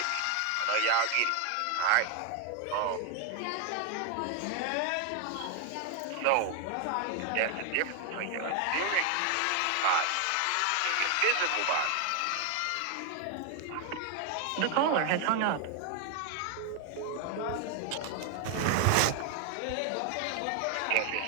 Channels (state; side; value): different; both; correlation 0.01